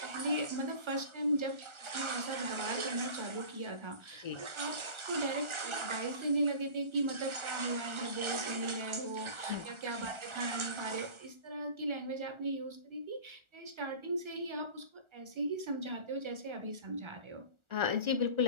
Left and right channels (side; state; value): left; late; 1.4 ms